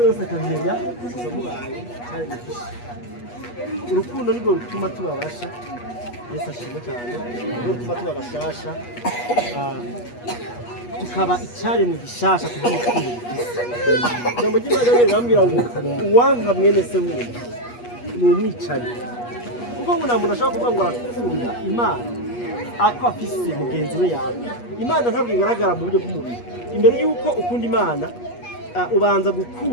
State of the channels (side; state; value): right; late; 8.3 ms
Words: yose akamenya gusa mubaye cyane gifishe urukundo nirwo rutuma tubabasha Yesu ashimwe cyane nirwo rutuma tubabashasha tukaba icyaremwe gishasha kugira urukundo rufise ijambo ry'Imana rirambwira ngo uwanka mwene se wumva ni umwicanyi kuko ngo nta muntu ashobora kuvuga ngo arakunda Imana ako afise mugenzi we yawe Imana ntabwo igaragara mu buryo bw'umubiri imbere yuko ukunda Imana ubanza